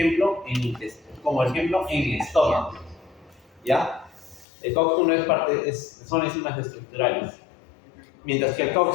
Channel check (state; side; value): drops out; right; at 4.5 s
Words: en el estómago. ¿Ya? El COX-1 son enzimas estructurales, mientras que el